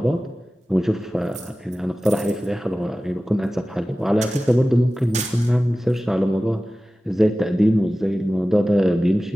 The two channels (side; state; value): both; normal; correlation 0.96